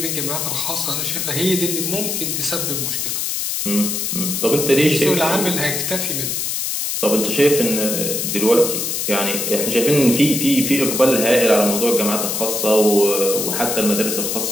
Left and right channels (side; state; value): left; noise; hiss, 1 dB below the sound